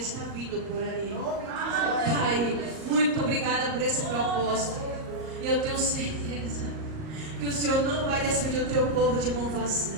vindo por aí. Pai, muito obrigada por esse propósito. E eu tenho certeza que o Senhor não vai despedir o teu povo de mão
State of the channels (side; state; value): left; late; 38 ms